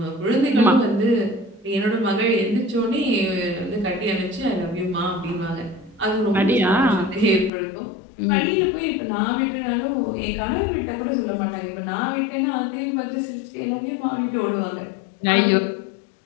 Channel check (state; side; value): drops out; right; at 7.5 s